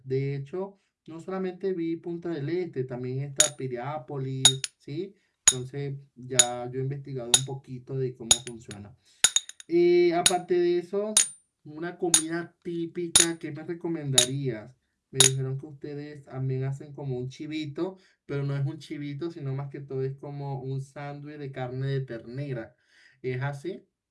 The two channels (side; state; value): both; identical; correlation 1.00